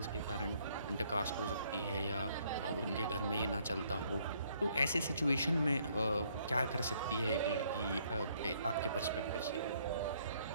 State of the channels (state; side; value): inverted; both; correlation -0.67